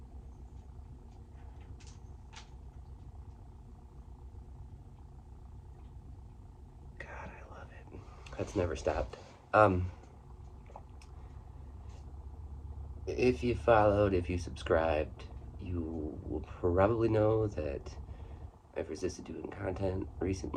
God, I love it. That's never stopped. Um, if you followed, if you subscribed, you will probably know that I've resisted doing content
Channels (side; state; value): both; identical; correlation 1.00